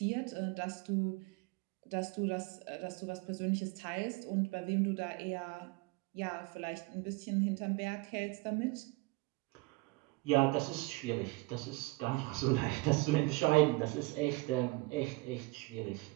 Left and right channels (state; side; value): quieter; left; 23.2 dB